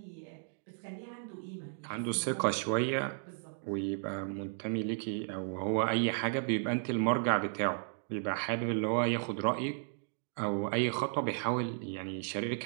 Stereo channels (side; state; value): left; silent; digital silence